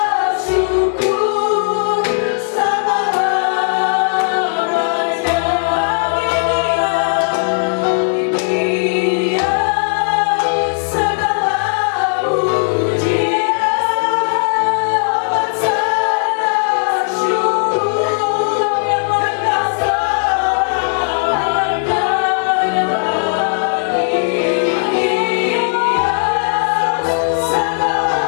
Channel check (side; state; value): right; silent; digital silence